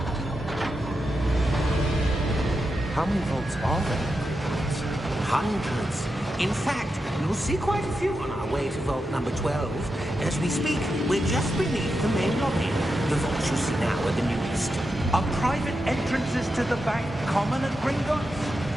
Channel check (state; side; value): normal; both; correlation 0.87